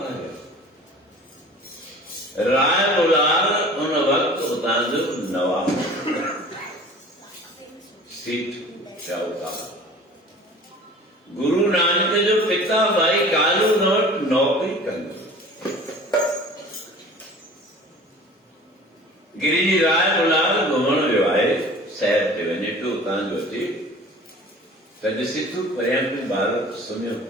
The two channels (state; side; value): normal; both; correlation 0.44